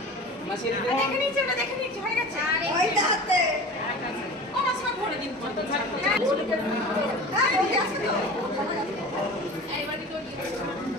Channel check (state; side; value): normal; both; correlation 0.36